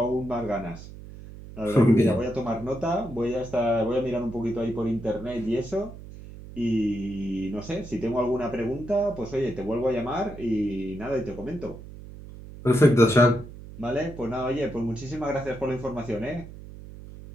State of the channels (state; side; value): noise; right; hum, 14 dB below the sound